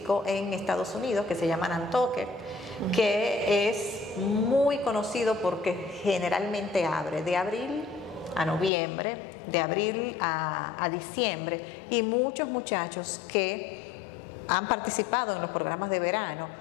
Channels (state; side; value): drops out; right; at 8.7 s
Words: en Estados Unidos que se llama Nantucket, que es muy conocido porque generalmente abre de abril a noviembre, de abril a diciembre, y muchos muchachos que han participado en los programas de verano,